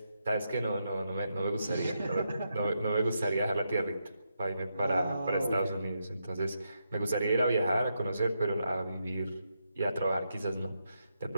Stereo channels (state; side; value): inverted; both; correlation -0.83